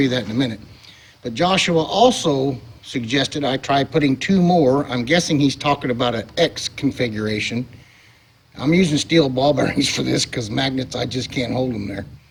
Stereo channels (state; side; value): identical; both; correlation 1.00